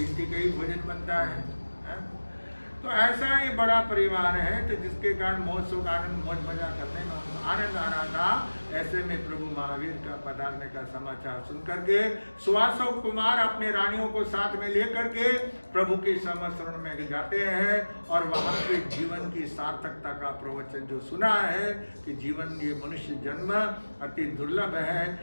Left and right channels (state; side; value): inverted; both; correlation -1.00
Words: का ही भोजन बनता है। तो ऐसा ही बड़ा परिवार है तो जिसके कारण मौज सुख आनंद मौज मजा करने में आनंद आ रहा था। ऐसे में प्रभु महावीर का पधारने का समाचार सुन करके सुवासव कुमार अपने रानियों को साथ में लेकर के प्रभु के समस्रण में जाते हैं और वहां के जीवन की सार्थकता का प्रवचन जो सुना है कि जीवन ये मनुष्य जन्म अति दुर्लभ है,